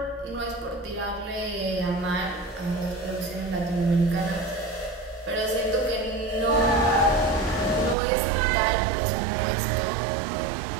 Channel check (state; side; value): drops out; left; at 8.0 s